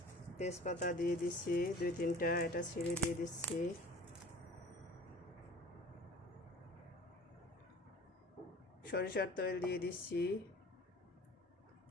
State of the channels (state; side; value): normal; both; correlation 0.44